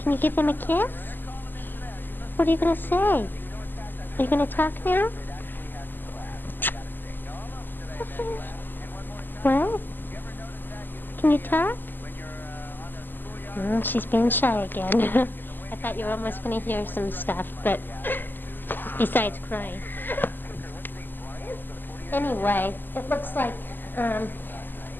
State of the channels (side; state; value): right; late; 0.090 ms